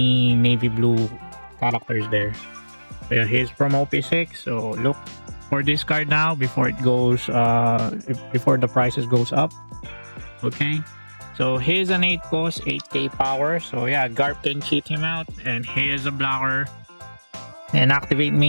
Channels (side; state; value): both; inverted; correlation -1.00